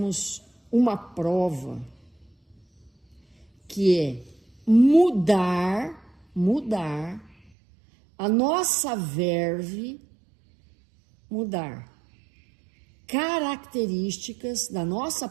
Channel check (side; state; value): left; drops out; at 7.5 s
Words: uma prova que é mudar a nossa verve, mudar características da nossa